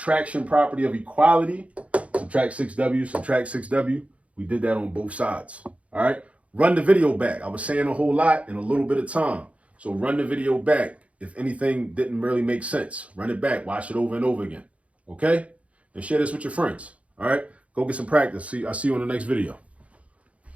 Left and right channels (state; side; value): late; left; 0.064 ms